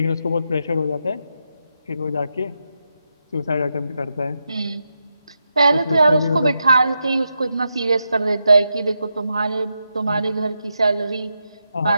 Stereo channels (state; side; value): inverted; both; correlation -0.86